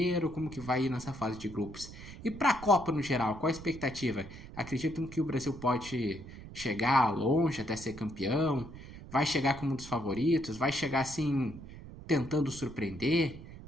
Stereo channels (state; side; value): noise; right; rumble, 14 dB below the sound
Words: Como que vai ir nessa fase de grupos? E para a Copa no geral, qual a expectativa? Acreditam que o Brasil pode chegar longe até ser campeão? Vai chegar como um dos favoritos? Vai chegar assim, tentando surpreender?